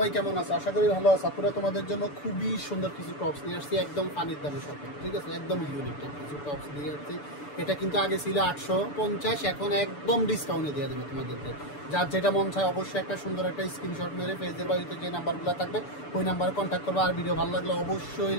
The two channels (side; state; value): right; late; 6.9 ms